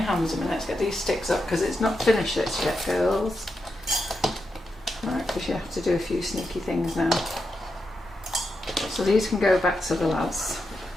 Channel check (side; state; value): both; normal; correlation 0.86